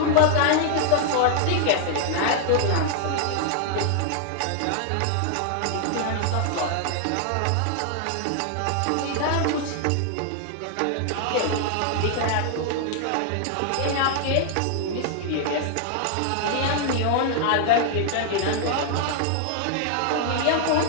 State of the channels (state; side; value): different; both; correlation 0.00